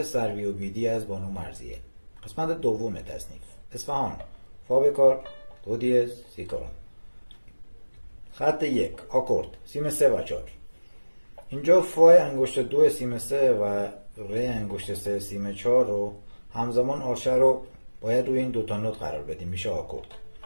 سروی و بیدی از بانو مرضیه. قسمت دوم تصنیف. اصفهان. فا بکار، دو دیز، سی کارون. خط 1. آکورد. سیم 3 و 4. اینجا فای انگشت 2 سیم 3 و ری انگشت 3 سیم 4 رو همزمان آرشه رو باید روی این دوتا نوت قرار بدیم. میشه آکورد.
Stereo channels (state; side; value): inverted; both; correlation -1.00